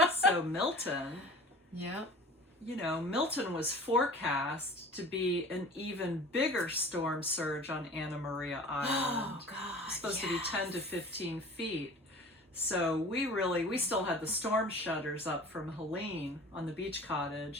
So Milton, Yep. you know, Milton was forecast to be an even bigger storm surge on Anna Maria Island. Oh, God. It's supposed to be 10 to 15 feet. So we still had the storm shutters up from Helene on the beach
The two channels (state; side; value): normal; both; correlation 0.42